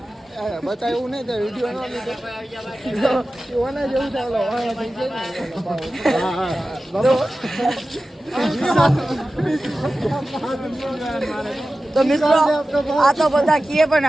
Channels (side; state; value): both; normal; correlation 0.95